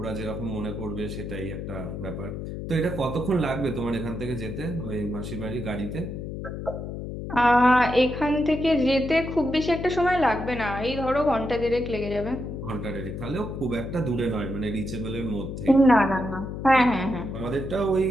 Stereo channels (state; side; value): noise; left; hum, 7 dB below the sound